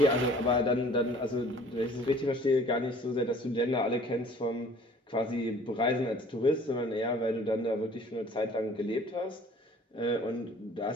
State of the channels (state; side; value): normal; both; correlation 0.52